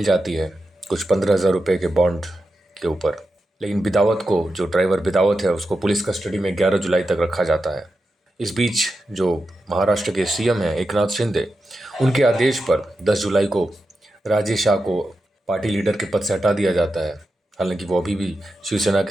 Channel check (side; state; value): both; normal; correlation 0.89